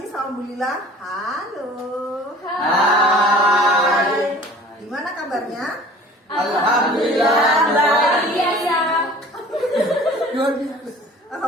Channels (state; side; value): normal; both; correlation 0.46